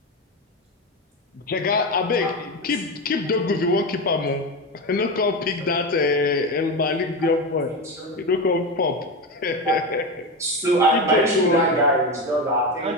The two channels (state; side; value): normal; both; correlation 0.18